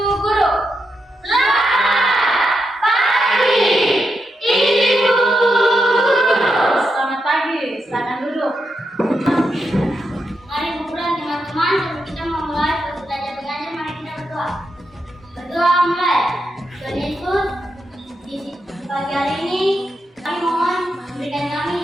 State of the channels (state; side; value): normal; both; correlation 0.85